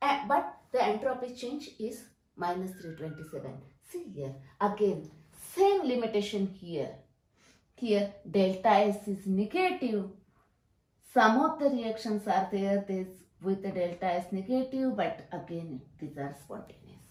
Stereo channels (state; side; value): identical; both; correlation 1.00